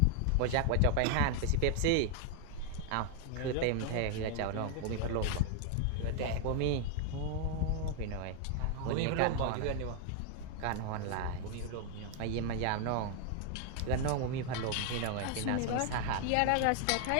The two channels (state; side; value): different; both; correlation 0.00